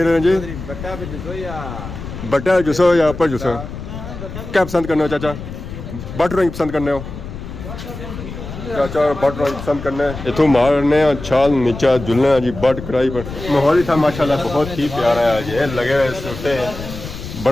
रहे हैं जी ਬੱਟਾ ਵਿੱਚ ਜੁਸੋ ਜਾਂ बटा जुसो या अपर जुसो क्या पसंद करने हो चाचा बट ड्राइंग पसंद करने हो चाचा बट ड्राइंग पसंद करने इथों मारने छाल नीचा जुलने जी बट कढ़ाई पर माहौल ही था माशाल्लाह बहुत ही प्यारा है ये लगे हुए सूटे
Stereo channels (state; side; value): noise; left; rumble, 10 dB below the sound